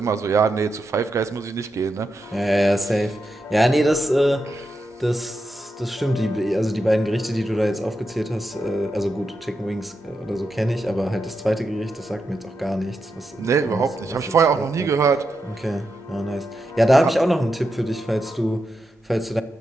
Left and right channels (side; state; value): both; normal; correlation 0.87